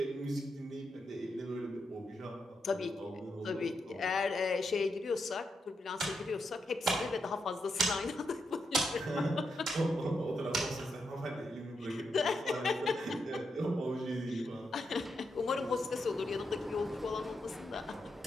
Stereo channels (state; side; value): normal; both; correlation 0.83